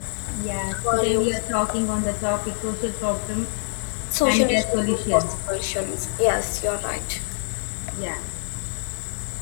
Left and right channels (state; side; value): silent; right; 62 dB below the other